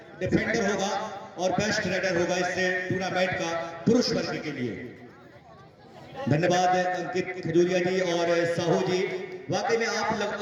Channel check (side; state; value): both; identical; correlation 1.00